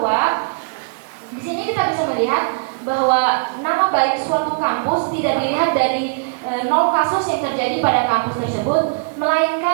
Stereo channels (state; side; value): quieter; left; 35.8 dB